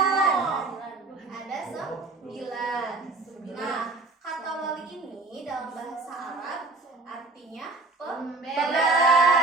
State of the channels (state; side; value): quieter; left; 3.5 dB